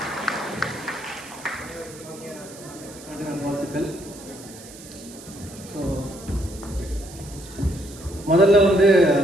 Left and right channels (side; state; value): right; noise; hiss, 17 dB below the sound